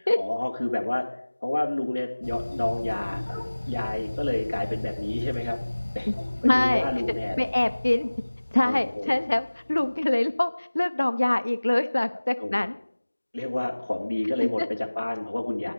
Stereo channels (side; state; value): both; inverted; correlation -1.00